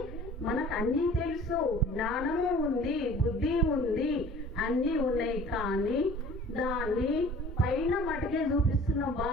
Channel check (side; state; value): both; normal; correlation 0.47